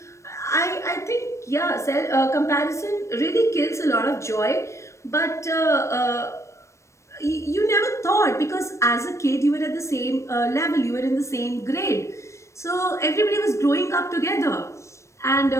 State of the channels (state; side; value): late; right; 0.14 ms